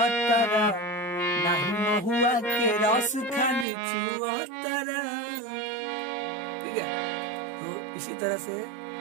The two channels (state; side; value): drops out; left; at 3.7 s